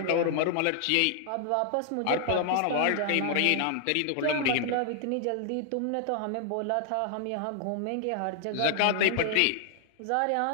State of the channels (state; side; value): different; both; correlation 0.00